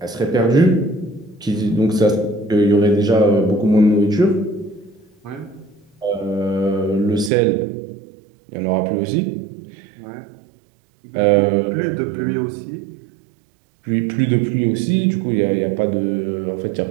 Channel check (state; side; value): drops out; left; at 7.3 s